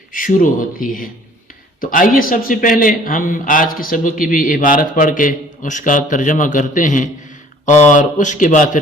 شروع ہوتی ہے۔ تو آئیے سب سے پہلے ہم آج کے سبق کی بھی عبارت پڑھ کے اس کا ترجمہ کرتے ہیں، اور اس کے بعد پھر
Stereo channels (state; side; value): normal; both; correlation 0.54